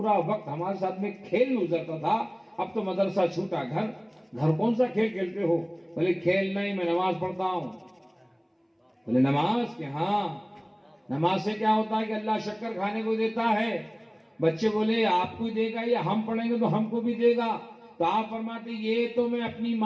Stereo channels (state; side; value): identical; both; correlation 1.00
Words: وقت ہمارے ساتھ میں کھیل میں گزرتا تھا, اب تو مدرسہ چھوٹا, گھر کون سا کھیل کھیلتے ہو؟ بولے کھیل نہیں, میں نماز پڑھتا ہوں. بولے نماز کہ ہاں, نماز سے کیا ہوتا ہے کہ اللہ شکر کھانے کو دیتا ہے. بچے بولے آپ کو دے گا یا ہم پڑھیں گے تو ہم کو بھی دے گا. تو آپ فرماتے یہ تو میں اپنی